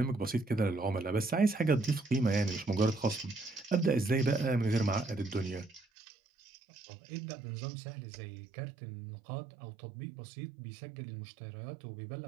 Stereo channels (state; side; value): drops out; left; at 5.9 s